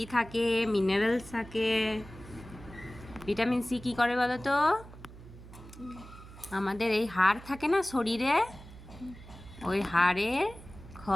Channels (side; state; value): right; noise; hum, 17 dB below the sound